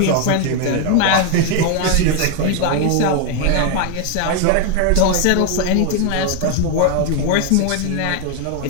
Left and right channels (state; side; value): different; both; correlation 0.01